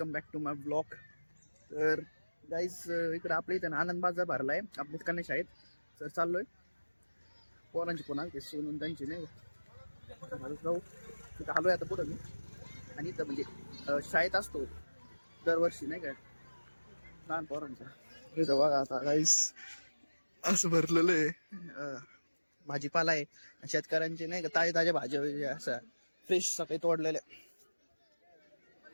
back to my blog. तर गाईज इकडे आपल्या इथं आनंद बाजार भरलाय आपल्या कन्या शाळेत. तर चाललोय पोरांची कोणा ते सोनून त्यांची नाही जाऊ तिथं आलोय आता पुढं मी. आणि इथं म्हणजे शाळेत असतो दरवर्षी नाही काय लहान पोरांचा. इथं बघा आता गाईज असं भरलेलं आहे भाजीपाला आहे. शेतकऱ्यांचे नाही का ताजे ताज्या भाज्या असं फ्रेश सकाळी तोडलेल्या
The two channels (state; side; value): inverted; both; correlation -1.00